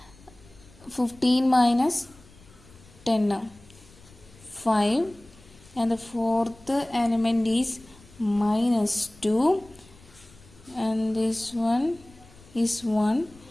15 minus 10 5, and the fourth element is minus 2 and this one is 1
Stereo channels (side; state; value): left; noise; rumble, 25 dB below the sound